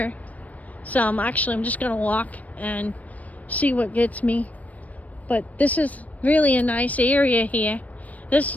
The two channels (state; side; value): late; right; 0.071 ms